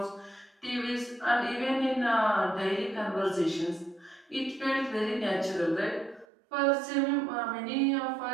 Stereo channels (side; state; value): left; drops out; at 6.2 s